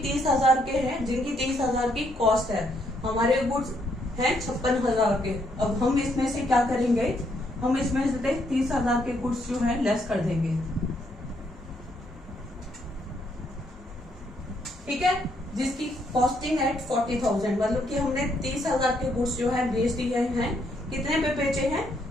30,000 के हैं, जिनकी 30,000 की कॉस्ट है। हमारे गुड्स हैं 56,000 के। अब हम इसमें से क्या करेंगे? हम इसमें से 30,000 के गुड्स जो है लेस कर देंगे। ठीक है, जिसकी कॉस्टिंग है 40,000, मतलब कि हमने 30,000 के गुड्स जो है बेच दिए हैं। कितने पे बेचे हैं?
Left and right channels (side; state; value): both; normal; correlation 0.73